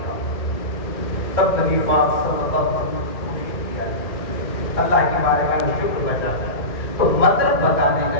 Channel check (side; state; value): right; late; 1.9 ms